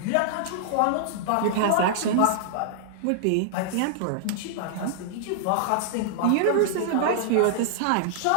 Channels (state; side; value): different; both; correlation -0.01